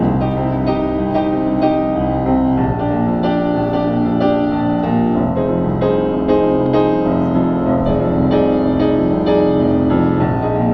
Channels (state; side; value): identical; both; correlation 1.00